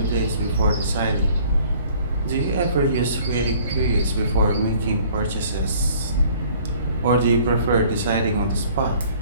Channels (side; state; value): both; inverted; correlation -0.54